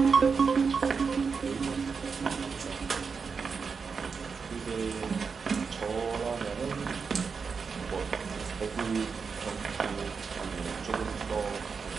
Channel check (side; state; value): left; quieter; 5.4 dB